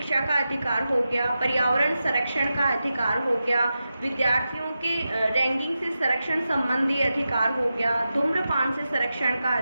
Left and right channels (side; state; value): both; inverted; correlation -0.91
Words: का अधिकार हो गया, पर्यावरण संरक्षण का अधिकार हो गया, विद्यार्थियों के रैंकिंग से संरक्षण संबंधी अधिकार हो गया, धूम्रपान से संरक्षण का